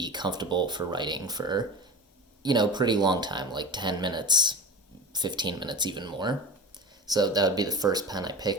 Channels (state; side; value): normal; both; correlation 0.31